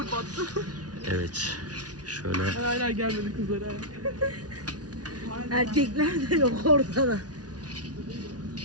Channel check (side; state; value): left; late; 0.69 ms